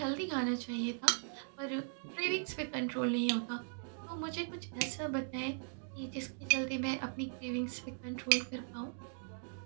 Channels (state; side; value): silent; left; digital silence